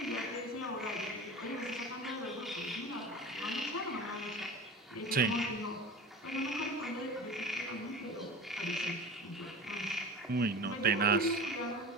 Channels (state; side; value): normal; both; correlation 0.34